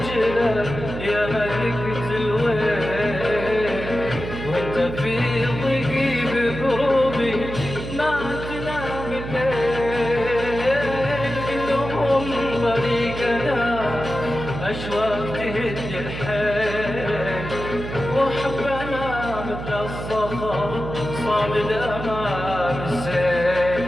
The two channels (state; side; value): noise; right; hum, 8 dB below the sound